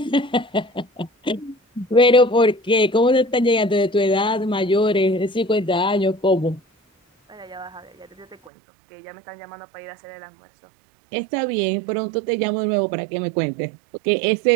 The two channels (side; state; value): left; drops out; at 8.5 s